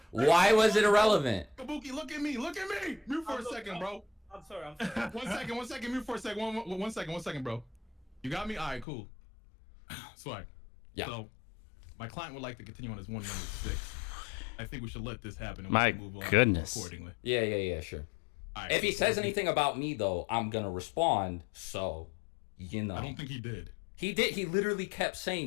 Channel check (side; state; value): right; drops out; at 8.8 s